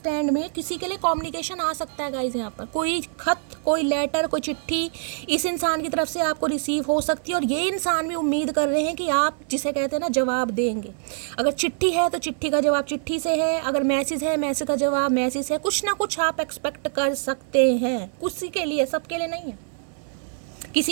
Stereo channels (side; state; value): left; silent; 62 dB below the other